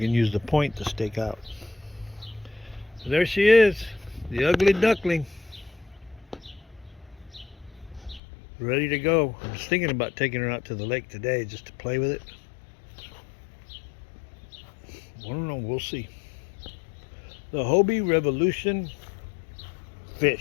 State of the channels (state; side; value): drops out; right; at 8.2 s